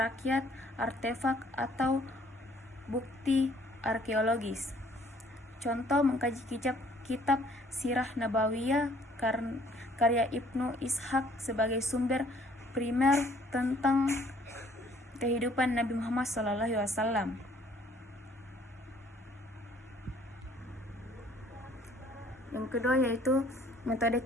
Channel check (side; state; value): both; normal; correlation 0.60